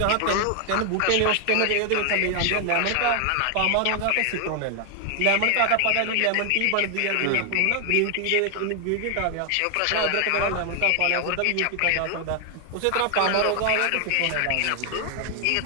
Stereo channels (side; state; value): both; different; correlation 0.00